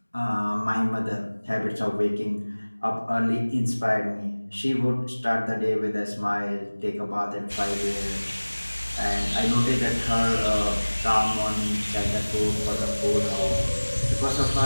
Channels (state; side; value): inverted; both; correlation -1.00